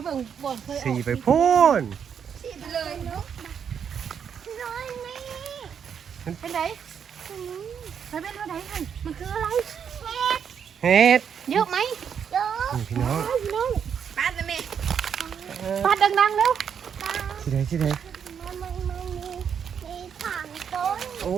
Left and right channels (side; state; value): left; quieter; 7.7 dB